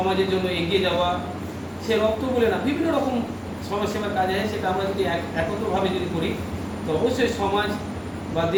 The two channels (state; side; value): identical; both; correlation 1.00